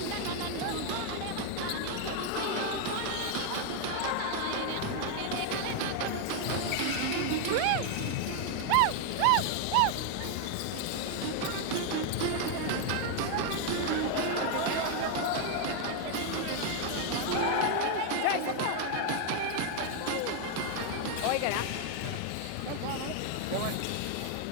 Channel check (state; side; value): different; both; correlation 0.01